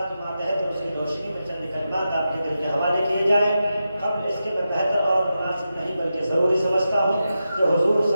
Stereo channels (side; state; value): both; inverted; correlation -0.89